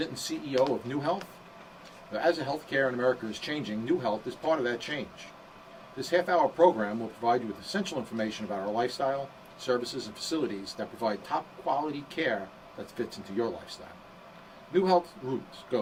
and CEO of New Health. As the healthcare in America is changing, New Health is part of that change. This half-hour program will provide you with essential information about our lifestyle, services, and facilities that provide top-quality care that fits into your lifestyle. New Health's roots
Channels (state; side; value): identical; both; correlation 1.00